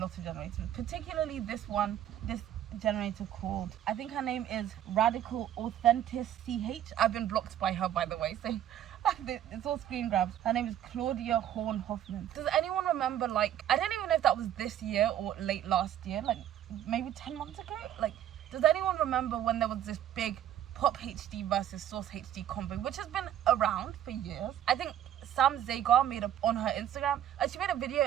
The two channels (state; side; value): quieter; left; 11.1 dB